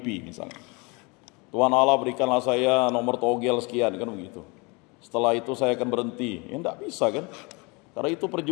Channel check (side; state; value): right; quieter; 28.6 dB